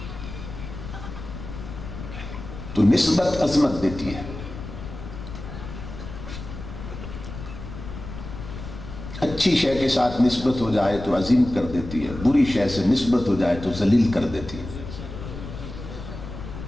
تو نسبت عظمت دیتی ہے۔ اچھی شے کے ساتھ نسبت ہو جائے تو عظیم کر دیتی ہے، بری شے سے نسبت ہو جائے تو ذلیل کر دیتی ہے۔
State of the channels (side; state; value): left; noise; rumble, 10 dB below the sound